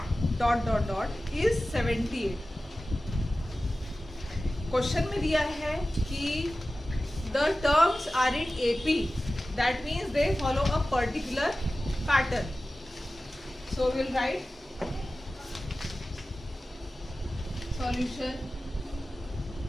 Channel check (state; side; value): normal; both; correlation 0.95